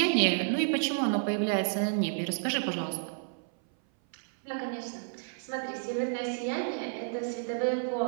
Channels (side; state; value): left; silent; 57 dB below the other